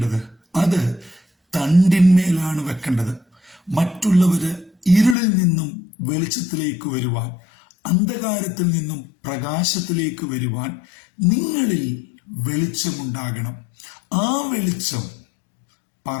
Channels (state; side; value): drops out; right; at 5.2 s